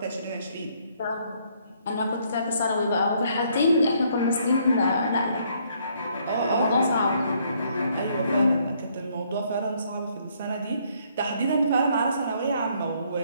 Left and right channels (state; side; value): inverted; both; correlation -0.68